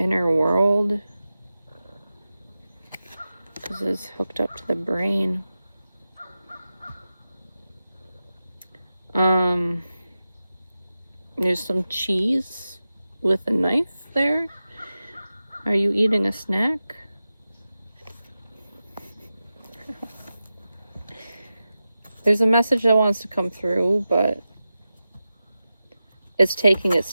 world. This is hooked up to the brain. There's some cheese with a knife there. Are you eating a snack? There's a message that wants to come through, but it's taking its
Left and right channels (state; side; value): inverted; both; correlation -0.93